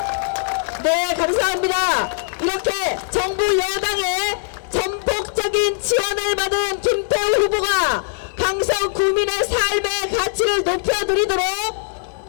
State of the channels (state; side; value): silent; right; 65 dB below the other